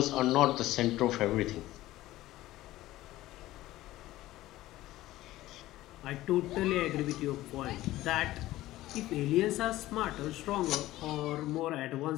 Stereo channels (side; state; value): right; quieter; 16.1 dB